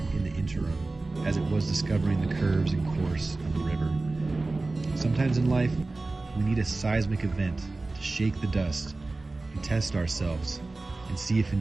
in the interim as it was discovering the curves and course of the river. Sometimes in life, we need a seismic event to shake the dust and test ourselves and see if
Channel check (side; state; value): left; quieter; 3.3 dB